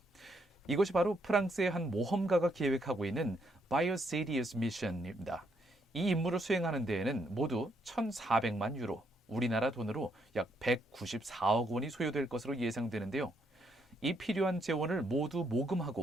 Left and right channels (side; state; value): both; normal; correlation 0.74